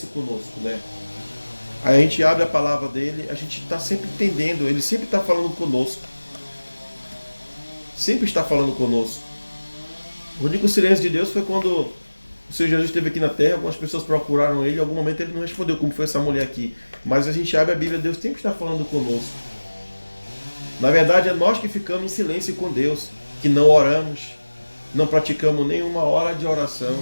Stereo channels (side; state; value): both; inverted; correlation -1.00